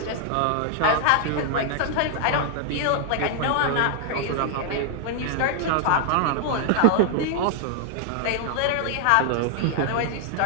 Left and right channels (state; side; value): different; both; correlation 0.00